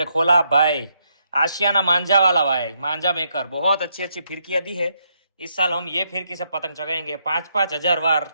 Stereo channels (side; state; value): both; inverted; correlation -0.77